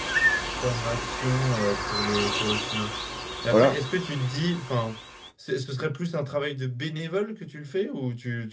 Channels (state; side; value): identical; both; correlation 1.00